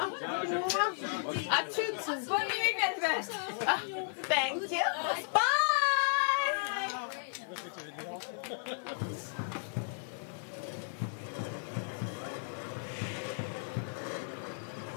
À toutes. Bonne nuit, Velvet. Thank you. Bye.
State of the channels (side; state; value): right; silent; digital silence